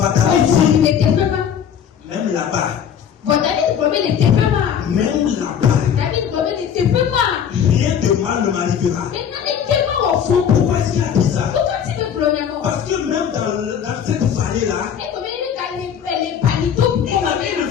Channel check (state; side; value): quieter; right; 8.3 dB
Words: même là-bas. Même là-bas. Rien de mal ne m'arrivera. Pourquoi est-ce qu'il a dit ça? Parce que même dans cette vallée-là, il ne